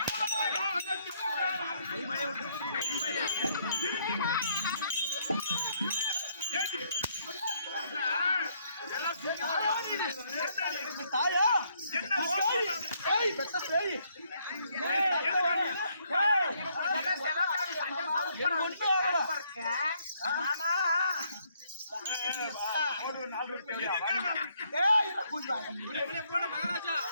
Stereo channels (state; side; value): inverted; both; correlation -0.70